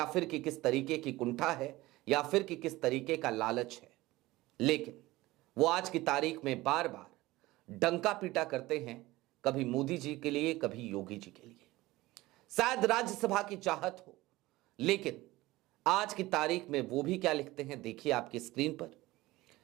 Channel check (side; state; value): left; quieter; 18.8 dB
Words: फिर कि किस तरीके की कुंठा है, या फिर कि किस तरीके का लालच है। लेकिन वो आज की तारीख में बार बार डंका पीटा करते हैं, कभी मोदी जी के लिए, कभी योगी जी के लिए। शायद राज्यसभा की चाहत हो, लेकिन आज की तारीख में वो भी क्या लिखते हैं, देखिए आपकी स्क्रीन पर।